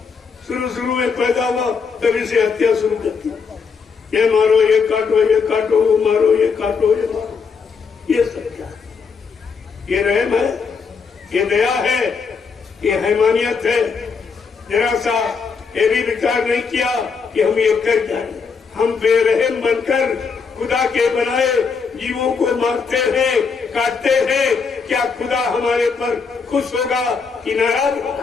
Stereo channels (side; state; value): right; quieter; 5.4 dB